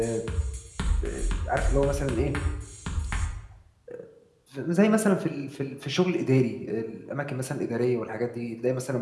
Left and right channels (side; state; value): both; identical; correlation 1.00